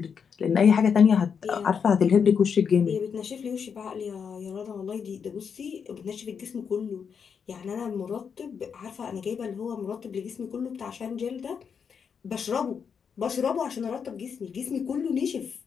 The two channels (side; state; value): right; quieter; 6.6 dB